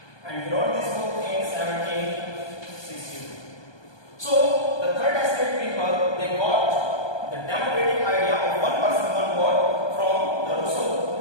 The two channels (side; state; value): right; late; 1.2 ms